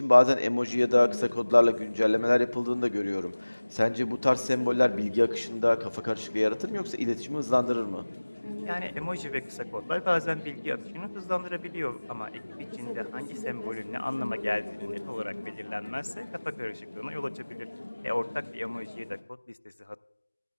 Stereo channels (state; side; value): inverted; both; correlation -1.00